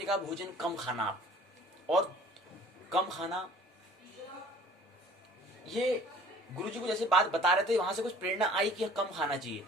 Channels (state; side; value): normal; both; correlation 0.51